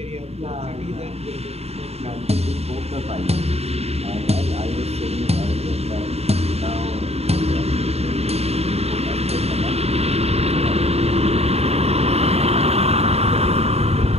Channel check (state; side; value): late; left; 0.30 ms